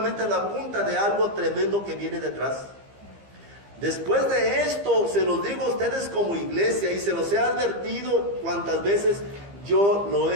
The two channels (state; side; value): late; left; 15 ms